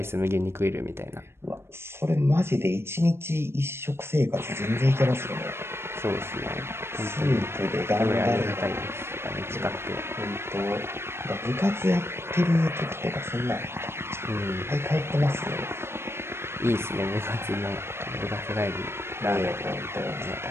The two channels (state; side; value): late; left; 0.12 ms